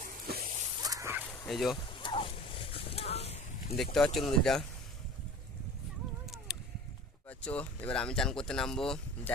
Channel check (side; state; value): both; normal; correlation 0.39